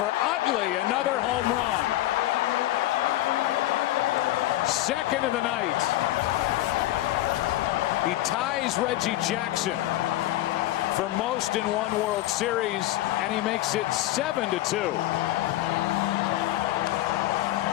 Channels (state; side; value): quieter; right; 15.4 dB